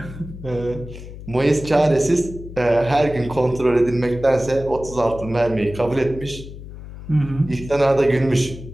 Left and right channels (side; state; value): left; noise; hum, 13 dB below the sound